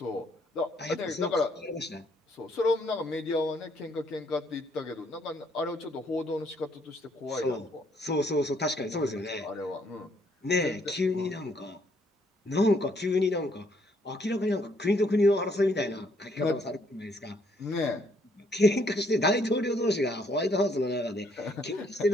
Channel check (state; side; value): normal; both; correlation 0.69